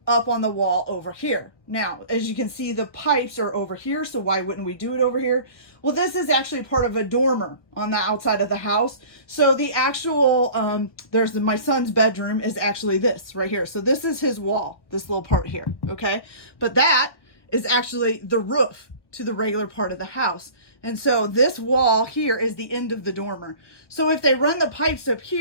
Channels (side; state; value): right; late; 1.0 ms